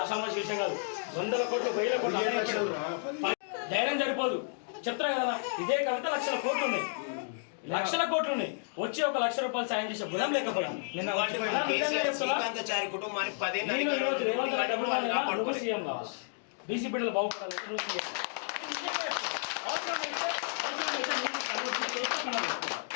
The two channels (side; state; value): right; silent; digital silence